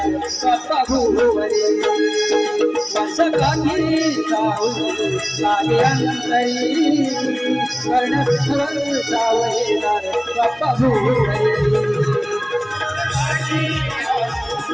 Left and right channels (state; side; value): identical; both; correlation 1.00